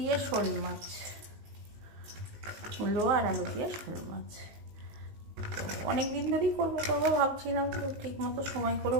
শোল মাছ, মূলো আর আলু দিয়ে শোল মাছ। তো অনেক দিন ধরেই করবো ভাবছিলাম, তো ঠিক মতো সময় করে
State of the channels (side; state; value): left; late; 19 ms